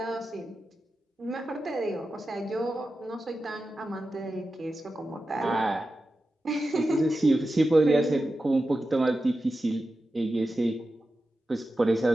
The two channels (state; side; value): normal; both; correlation 0.92